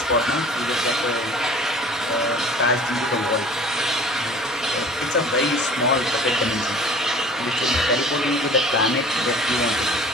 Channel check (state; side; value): normal; both; correlation 0.46